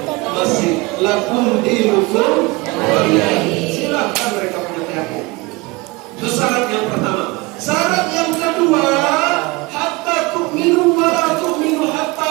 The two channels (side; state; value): left; quieter; 23.7 dB